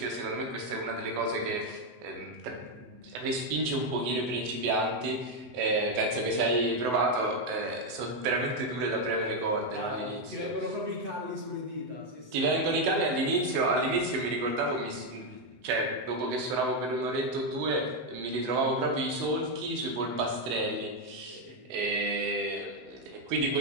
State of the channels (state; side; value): late; left; 7.9 ms